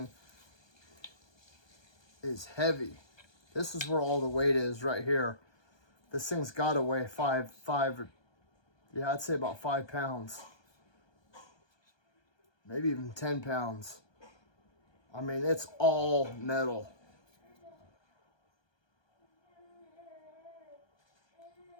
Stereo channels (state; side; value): late; right; 1.2 ms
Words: is heavy. This is where all the weight is right here. This thing's got to weigh yeah, I'd say about 5 pounds. Maybe even 10 pounds. I mean, it's all metal.